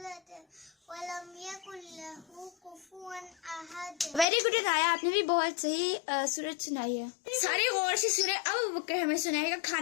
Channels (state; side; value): drops out; right; at 4.2 s